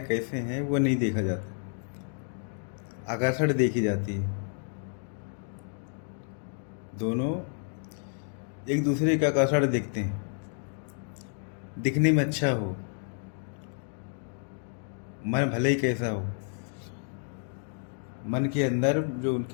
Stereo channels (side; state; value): right; silent; 58 dB below the other